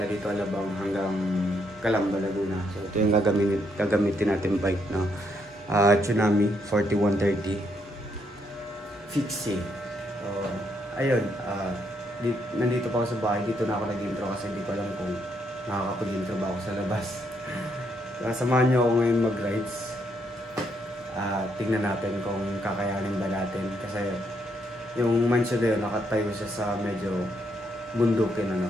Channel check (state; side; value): normal; both; correlation 0.75